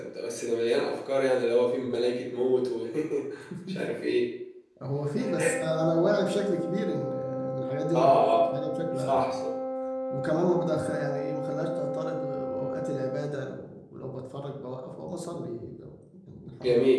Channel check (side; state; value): both; identical; correlation 1.00